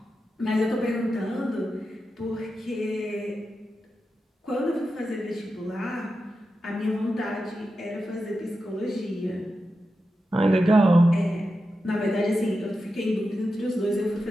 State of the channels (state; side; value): normal; both; correlation 0.90